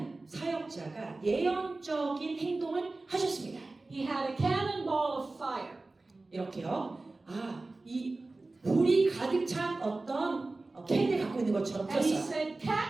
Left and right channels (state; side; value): quieter; left; 3.2 dB